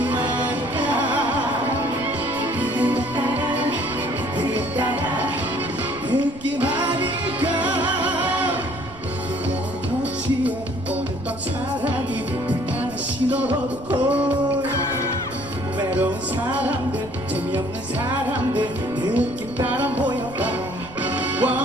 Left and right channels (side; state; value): right; noise; rumble, 18 dB below the sound